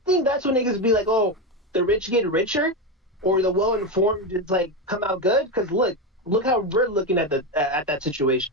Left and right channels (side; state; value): both; normal; correlation 0.13